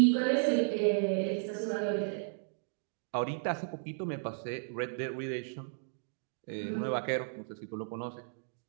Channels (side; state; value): left; silent; digital silence